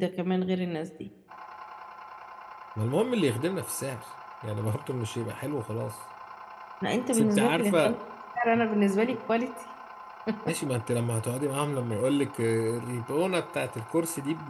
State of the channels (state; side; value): identical; both; correlation 1.00